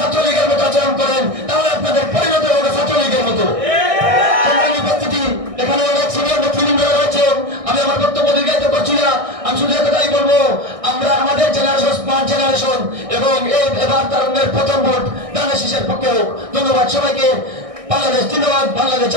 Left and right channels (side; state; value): left; late; 1.6 ms